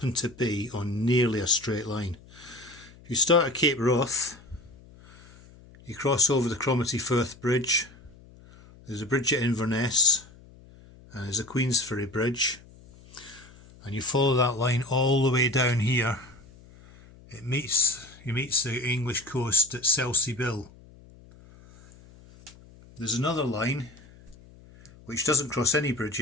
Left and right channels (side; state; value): left; noise; hum, 23 dB below the sound